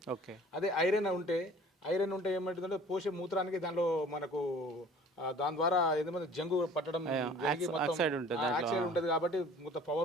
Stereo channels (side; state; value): both; normal; correlation 0.49